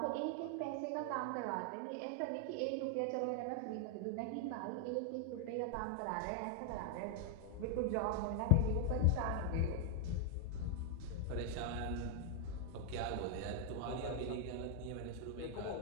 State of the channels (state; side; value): different; both; correlation 0.00